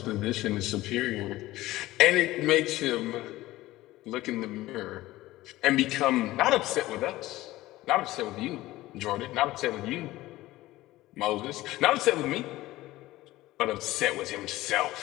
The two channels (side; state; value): right; quieter; 17.2 dB